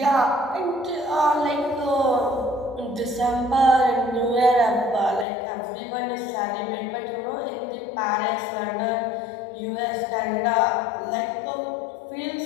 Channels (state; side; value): drops out; right; at 5.2 s